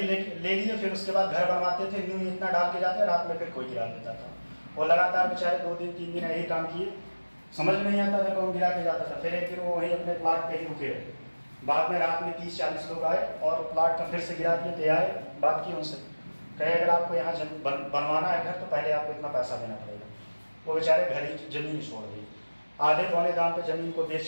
ले लिए, फिर उसके बाद घर बनवाते थे, न्यू इतना डाल के जाते, रात में फिर कोई गिरा देता था। वो लगातार बेचारे 2 दिन 3 दिन यही काम किए, समझ में नहीं आता था कौन गिरा के जाता था। फिर एक दिन वो वहीं अपने प्लाट पे ही रुके। बाद में रात में 30-40 लोग आए और प्लाट का फिर से गिरा दिए। तो आए, बात की उनसे, कहे अगर आपको यहाँ बनवाना है घर तो पहले आपको इतना पैसा देना पड़ेगा। वो बेचारे घर ही जमीन छोड़ दी, आधे पौने दाम पे जमीन को बेच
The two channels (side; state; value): both; inverted; correlation -1.00